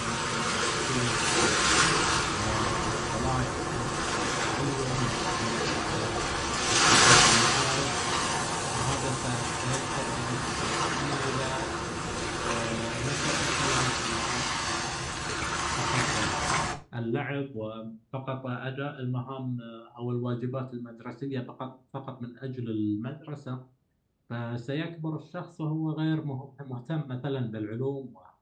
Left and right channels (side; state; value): both; identical; correlation 1.00